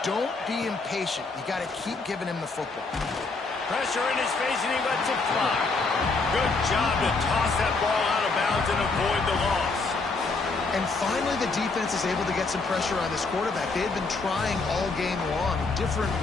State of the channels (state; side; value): quieter; right; 3.9 dB